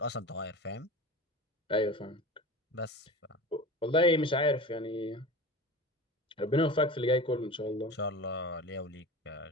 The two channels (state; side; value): normal; both; correlation 0.32